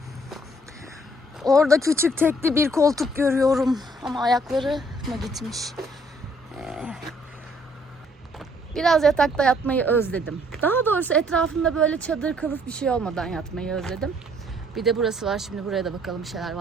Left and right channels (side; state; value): both; normal; correlation 0.64